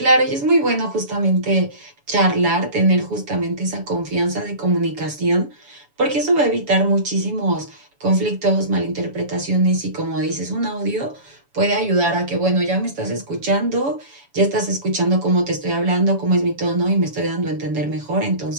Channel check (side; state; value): left; late; 7.1 ms